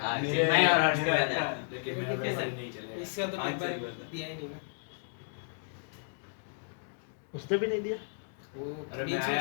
मेरे- नहीं और आर्ट्स का था। लेकिन मेरा वैसे नहीं चलेगा। इसका तो आज पेपर से ही दिया ही नहीं ना। उसने भी नहीं दिया। वो अरे बीच मैं में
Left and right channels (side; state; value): right; silent; digital silence